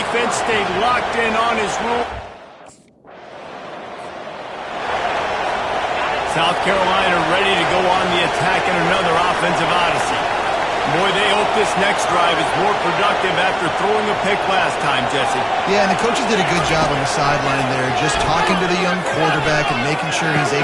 stayed locked in on his rule. South Carolina ready to go on the attack in another offensive odyssey. Boy, they hope this next drive is more productive after throwing a pick last time, Jesse. Yeah, and the coaches did a good job on the sideline there, just talking to the young quarterback and making sure he's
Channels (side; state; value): both; identical; correlation 1.00